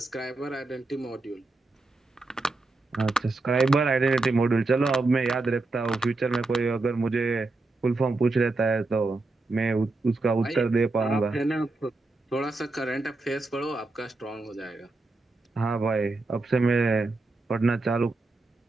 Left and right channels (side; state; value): left; quieter; 3.3 dB